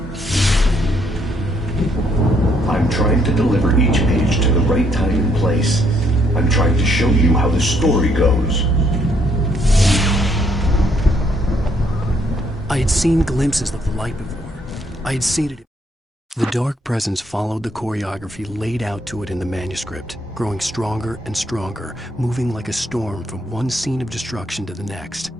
I'm trying to deliver each page to the right time and place. I'm trying to show you how the story goes. I had seen glimpses of the light before. I had seen it. The dark presence followed the choreography laid out to it in the manuscript, growing stronger and stronger, moving like a storm from one scene of destruction to the next.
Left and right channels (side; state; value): both; normal; correlation 0.70